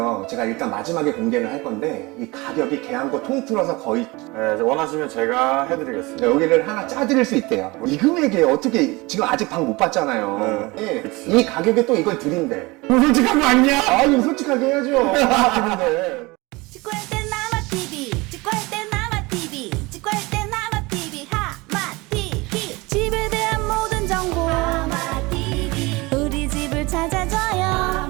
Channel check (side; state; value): left; quieter; 23.5 dB